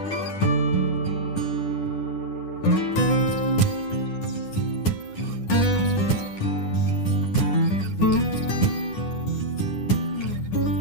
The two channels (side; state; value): right; late; 9.9 ms